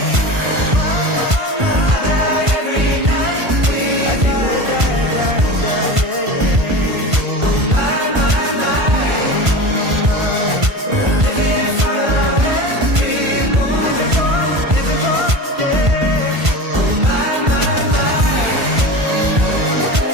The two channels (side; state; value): left; late; 1.5 ms